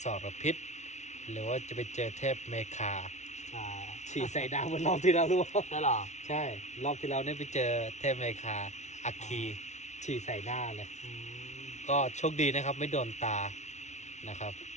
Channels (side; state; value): right; late; 0.33 ms